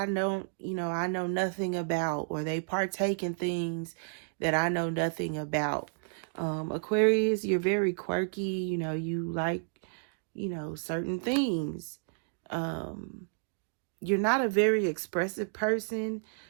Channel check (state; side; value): silent; left; digital silence